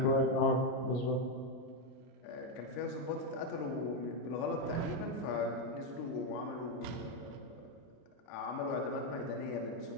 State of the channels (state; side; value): late; right; 33 ms